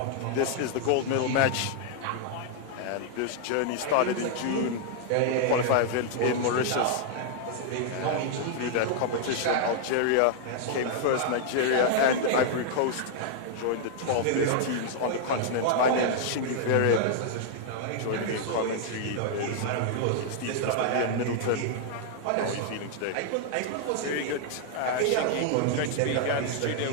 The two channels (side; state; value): both; different; correlation 0.00